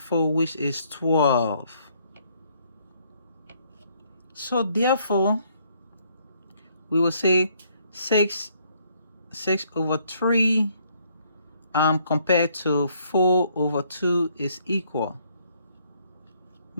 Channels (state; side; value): inverted; both; correlation -0.67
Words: which is 12. So therefore, we will say 6 over 3 compared to 4 over 2 is equal.